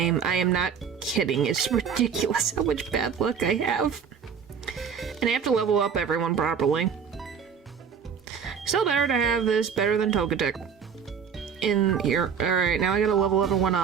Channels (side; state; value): left; quieter; 7.0 dB